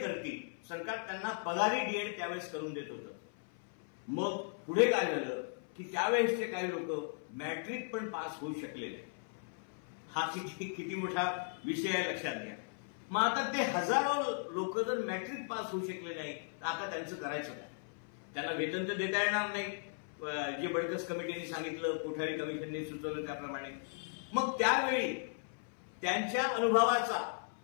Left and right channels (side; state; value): right; silent; 53 dB below the other